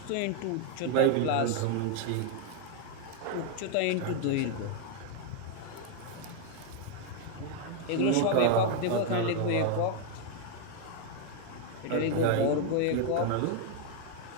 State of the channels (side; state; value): both; different; correlation 0.01